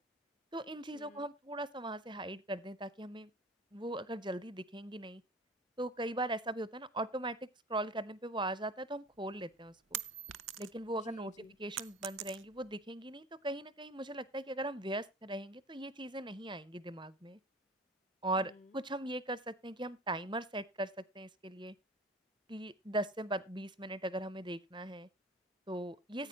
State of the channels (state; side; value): normal; both; correlation 0.40